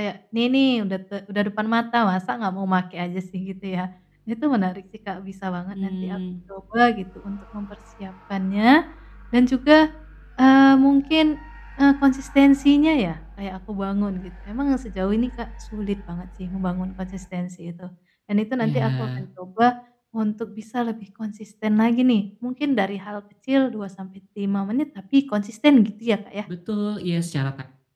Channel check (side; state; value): both; identical; correlation 1.00